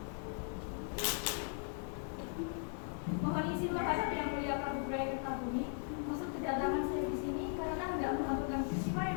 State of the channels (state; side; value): silent; right; 52 dB below the other